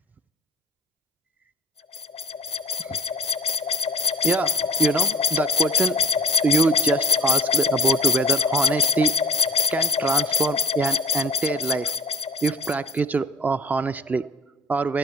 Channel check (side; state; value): both; normal; correlation 0.38